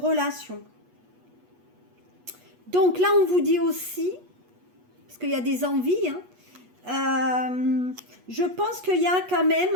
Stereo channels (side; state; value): left; late; 8.3 ms